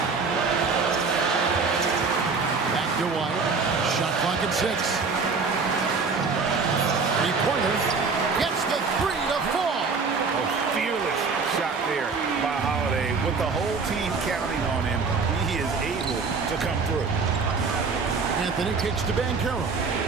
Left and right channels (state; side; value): quieter; left; 4.7 dB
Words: Back to White. Shot clock at 6. Three-pointer. Gets the 3 to fall. A fearless shot there by Holiday. With the whole team counting on him, he is able to come through. Anthony kicks to Banchero.